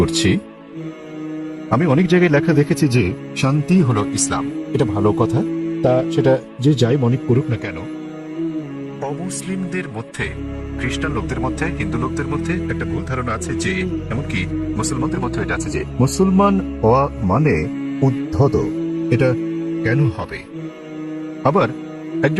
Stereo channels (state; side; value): identical; both; correlation 1.00